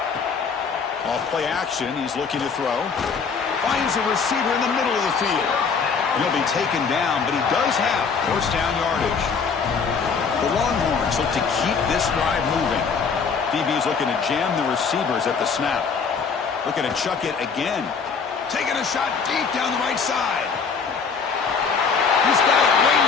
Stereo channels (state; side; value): quieter; right; 5.6 dB